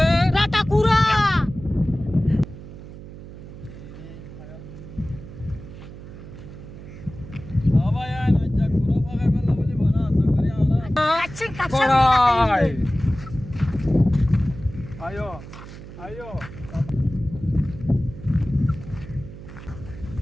রাতা কুরা বাবা আয় না যা কুরা ফাগাই বললা বলি বনা আশা করি আমরা আচ্ছা কাছে করাই আয়ো আয়ো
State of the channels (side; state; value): right; noise; hum, 14 dB below the sound